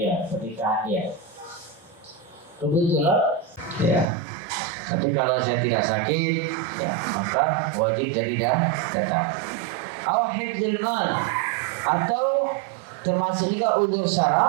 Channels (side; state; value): left; drops out; at 4.0 s